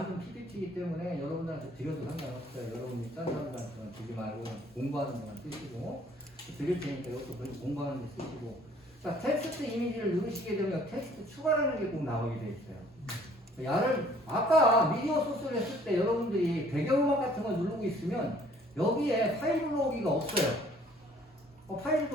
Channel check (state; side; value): normal; both; correlation 0.57